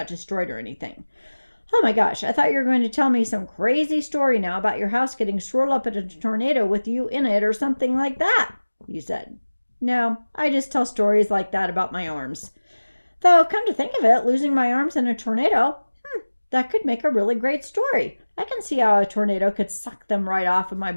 destroyed or anything. Oh my gosh, I thought you were going to tell me some crazy story now about your house getting swirled up in a tornado with you in it or something like that, you said. No, I just tell stories like that about my arms. Though, come to think of it, losing my arms in a tornado, that could make a really great story. I can see how a tornado could suck them right off of my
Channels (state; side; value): inverted; both; correlation -1.00